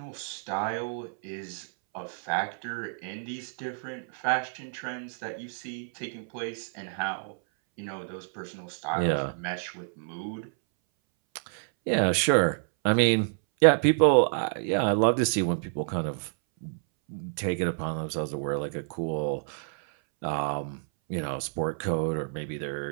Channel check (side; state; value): left; silent; 59 dB below the other